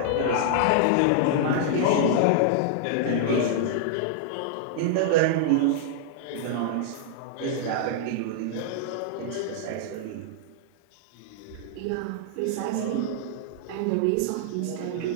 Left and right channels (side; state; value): both; different; correlation -0.01